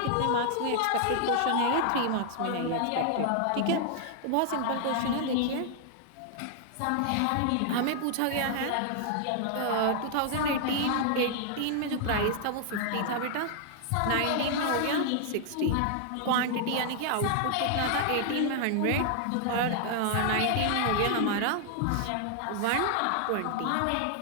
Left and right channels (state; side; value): different; both; correlation 0.00